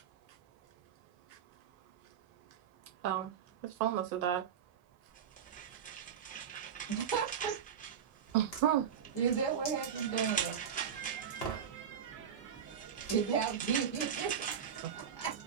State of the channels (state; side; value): quieter; left; 8.0 dB